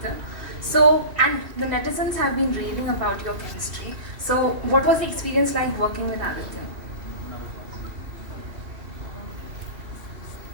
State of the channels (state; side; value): late; left; 2.6 ms